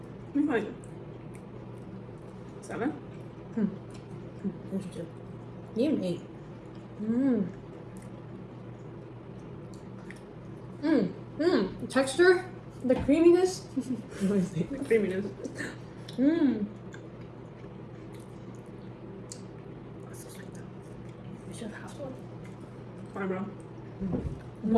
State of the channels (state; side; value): identical; both; correlation 1.00